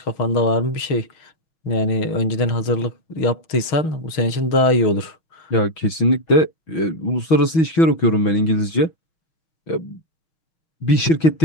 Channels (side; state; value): right; late; 6.1 ms